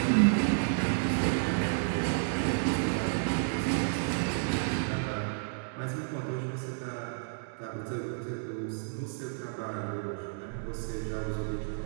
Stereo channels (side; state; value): left; silent; digital silence